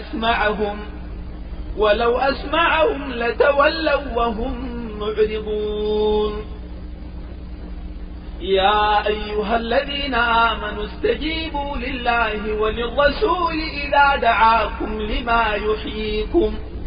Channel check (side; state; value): both; identical; correlation 1.00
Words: ولو أسمعهم لتولوا وهم معرضون. يا أيها الذين آمنوا استجيبوا لله وللرسول إذا دعاكم لما يحييكم